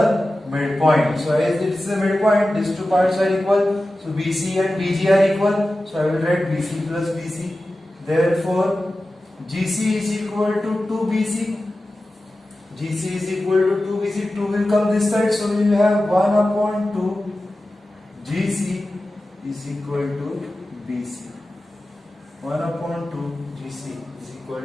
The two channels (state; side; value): normal; both; correlation 0.94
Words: midpoint. So as it is the midpoint, these two parts are equal. So BC and BG are equal. So I will write BC plus BC. Therefore, GC is equal to 2BC. GC is equal to 2BC. 2 will come this side. So we will have 1 upon 2 GC is equal to BC. 1 upon 2 GC is equal